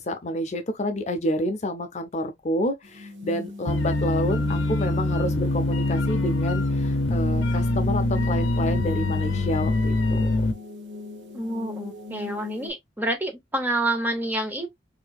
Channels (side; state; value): both; normal; correlation 0.63